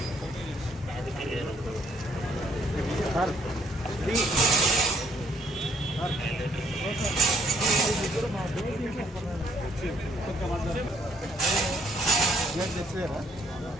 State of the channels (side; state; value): both; normal; correlation 0.67